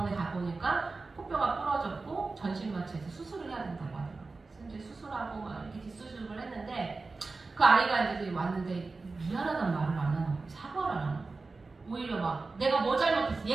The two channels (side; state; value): left; quieter; 3.8 dB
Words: 가보니까 코뼈가 부러졌고 전신마취해서 수술을 해야 된다고 하더라고요. 그래서 이제 수술하고 막 이렇게 뒷수술을 했는데 그 아이가 이제 왔는데 미안하다는 말을 안 하는 거예요. 사과를 안 하는 거예요. 오히려 막 내가 뭐 잘못했어,